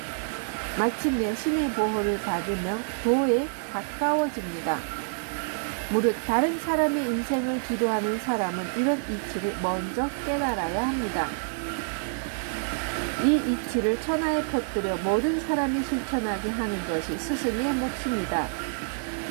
마침내 신의 보호를 받으며 도에 가까워집니다. 무릇 다른 사람의 인생을 지도하는 사람은 이런 이치를 먼저 깨달아야 합니다. 이 이치를 천하에 퍼뜨려 모든 사람이 실천하게 하는 것이 스승의 몫입니다.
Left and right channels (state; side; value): silent; left; digital silence